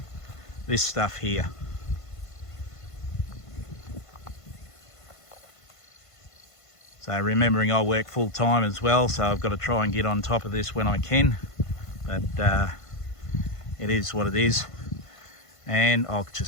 this stuff here. So remembering I work full time as well, so I've got to try and get on top of this when I can, but it is what it is, and I'll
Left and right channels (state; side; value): late; right; 1.5 ms